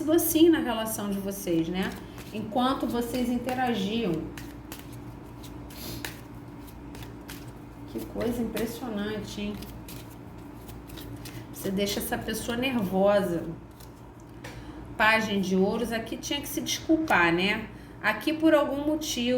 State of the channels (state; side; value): identical; both; correlation 1.00